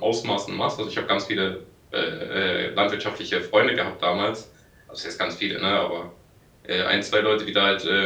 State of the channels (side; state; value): both; identical; correlation 1.00